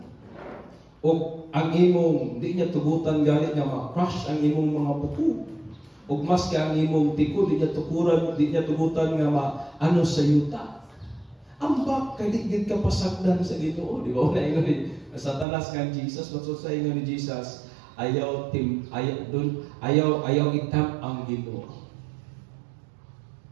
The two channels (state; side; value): drops out; left; at 15.5 s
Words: O ang imong, di niya tugutan galit nga ma-crush ang imong mga buko. O mas ka ang imong tiko, di niya tukuran, di niya tugutan nga ma-ano sa yuta. Ambak, kay di ka pasagdan sa Ginoo. Di ba? Una ingon ni Satanas nga Jesus, maksud sa ingon ni Jesus, ayaw itam ang Ginoo.